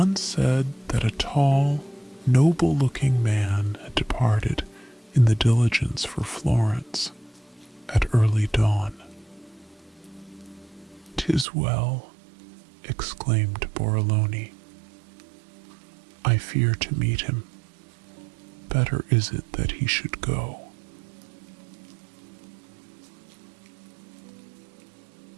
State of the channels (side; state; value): left; drops out; at 11.5 s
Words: said that a tall, noble-looking man had departed in the diligence for Florence at early dawn. "'Tis well," exclaimed Borrolone. "I fear to meet him. Better is it that he should go."